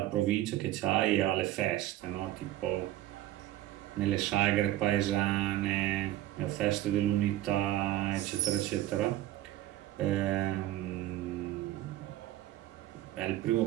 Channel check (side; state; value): left; quieter; 14.6 dB